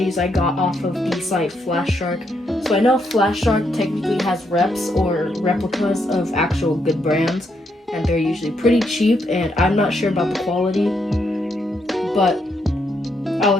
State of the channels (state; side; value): normal; both; correlation 0.78